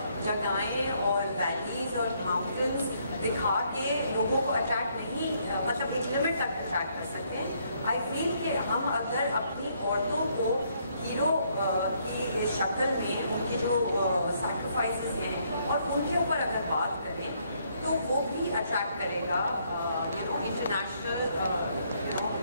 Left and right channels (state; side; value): inverted; both; correlation -0.70